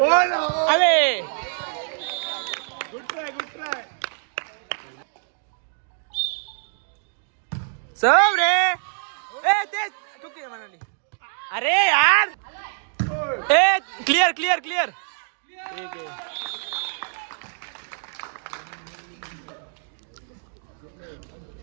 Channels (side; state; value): left; silent; 62 dB below the other